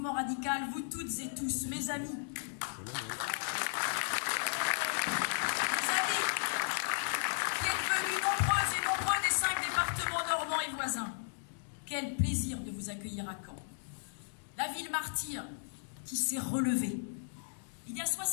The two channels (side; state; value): right; silent; digital silence